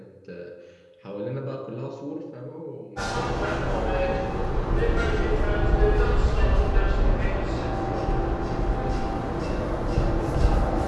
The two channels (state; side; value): identical; both; correlation 1.00